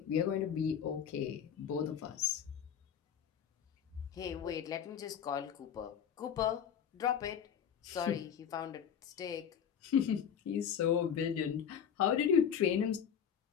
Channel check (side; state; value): right; quieter; 8.2 dB